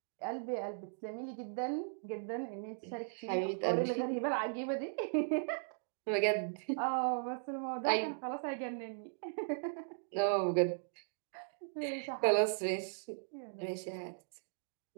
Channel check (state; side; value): silent; left; digital silence